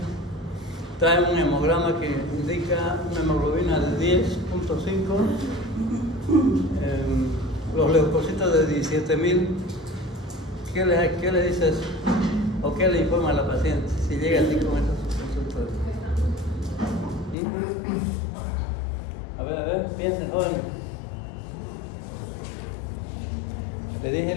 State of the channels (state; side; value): drops out; right; at 17.4 s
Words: trae un hemograma que indica una hemoglobina de 10.5, los leucocitos de 17.000. ¿Qué le dices o qué le informa a la paciente si llega así con esos consultorios? A ver, piensen, joven. Le dije